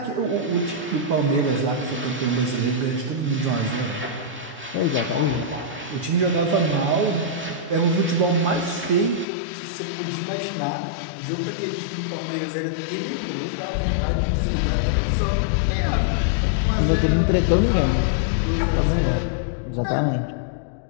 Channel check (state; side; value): drops out; right; at 9.2 s